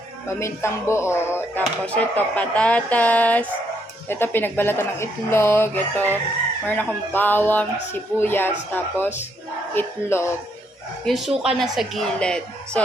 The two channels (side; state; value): both; normal; correlation 0.74